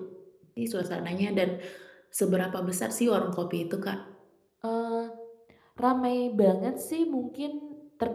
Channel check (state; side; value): identical; both; correlation 1.00